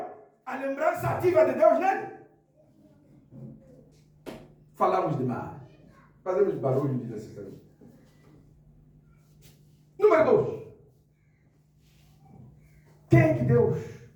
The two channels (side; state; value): both; identical; correlation 1.00